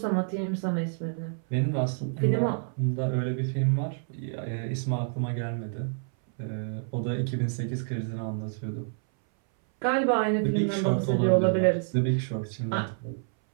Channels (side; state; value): left; silent; 59 dB below the other